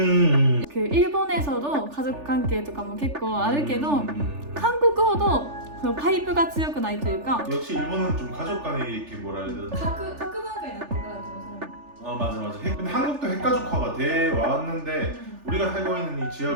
일본에서도 가족 관계 とかも結構あるけど 한국어도 파이프가 強くないというか 역시 일본은 좀 가족 간에 이렇게 뭐라 해야 되나? 각文化になってから좀 맞아. 근데 한국도 핵가족화가 돼 왔는데 우리가 살고 있는 이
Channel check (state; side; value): late; left; 3.4 ms